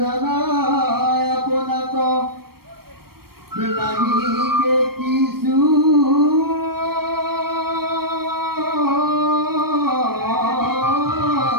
আপোনাক নাহিকে কিছু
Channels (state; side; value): late; left; 0.94 ms